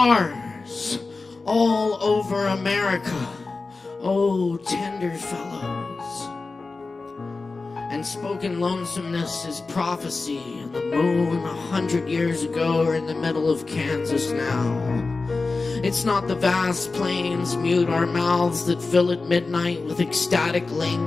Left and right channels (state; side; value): quieter; right; 3.8 dB